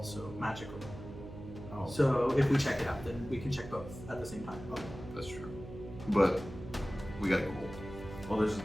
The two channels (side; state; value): right; noise; hum, 12 dB below the sound